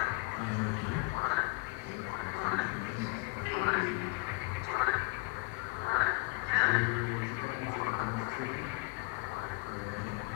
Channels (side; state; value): right; quieter; 26.2 dB